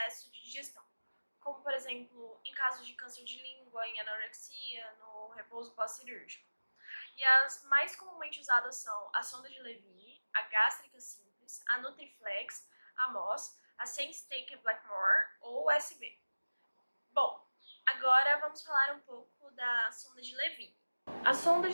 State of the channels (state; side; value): inverted; both; correlation -1.00